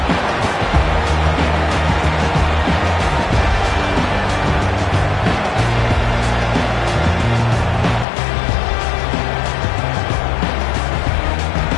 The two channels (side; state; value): right; drops out; at 8.1 s